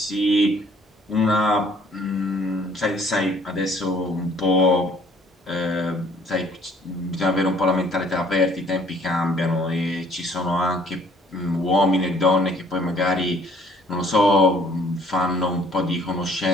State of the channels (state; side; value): normal; both; correlation 0.59